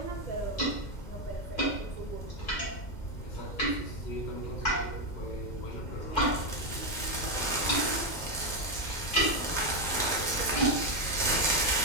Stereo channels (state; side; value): late; right; 2.1 ms